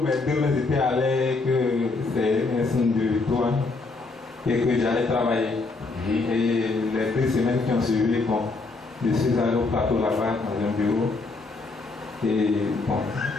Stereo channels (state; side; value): quieter; right; 3.7 dB